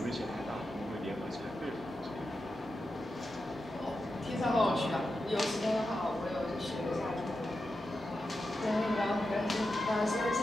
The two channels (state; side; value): normal; both; correlation 0.89